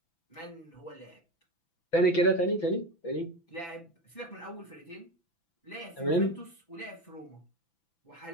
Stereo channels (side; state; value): right; late; 5.9 ms